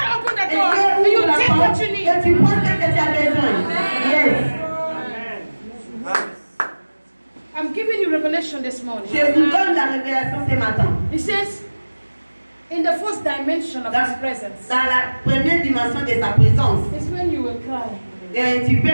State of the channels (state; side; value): inverted; both; correlation -1.00